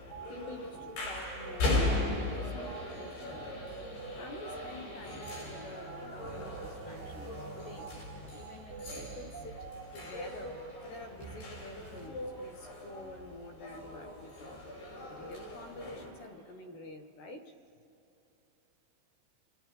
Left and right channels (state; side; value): late; right; 15 ms